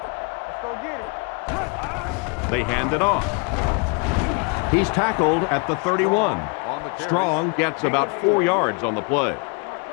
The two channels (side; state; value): right; quieter; 32.1 dB